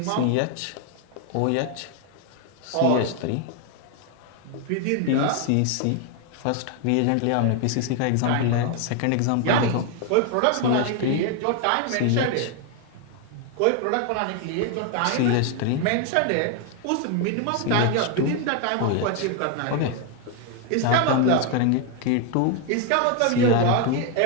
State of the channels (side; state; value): both; different; correlation 0.01